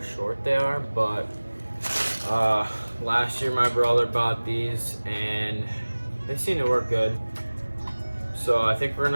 short they are, but last year my brother bought these and they seem to work good. So I think we're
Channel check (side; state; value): both; inverted; correlation -1.00